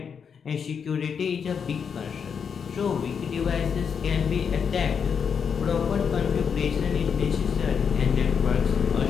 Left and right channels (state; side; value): quieter; right; 6.7 dB